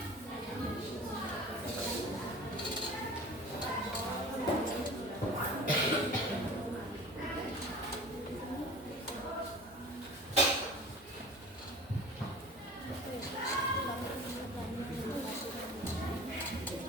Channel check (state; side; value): normal; both; correlation 0.40